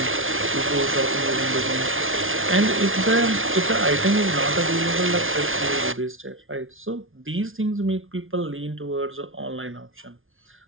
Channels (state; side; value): late; left; 0.58 ms